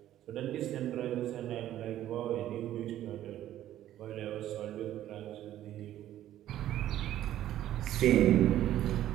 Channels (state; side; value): quieter; left; 12.6 dB